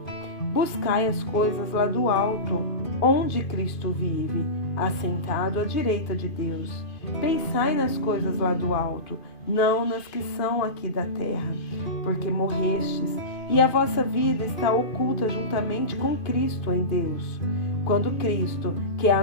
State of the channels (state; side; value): late; right; 2.5 ms